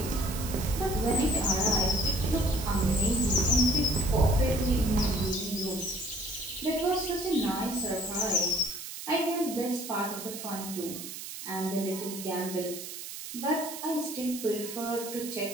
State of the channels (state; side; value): noise; right; hiss, 9 dB below the sound